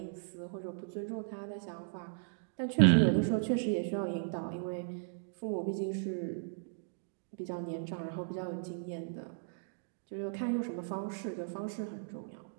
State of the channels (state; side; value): silent; left; digital silence